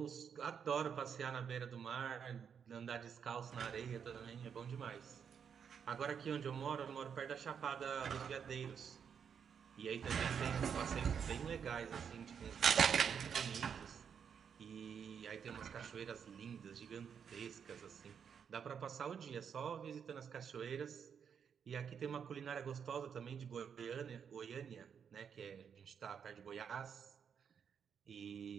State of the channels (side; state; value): left; quieter; 7.3 dB